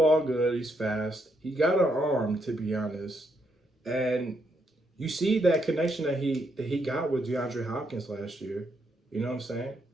good. He's fast. He got an arm, to be honest. And you see that connection that he got with DeAndre Hopkins last year. You know what I'm saying?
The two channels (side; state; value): both; normal; correlation 0.77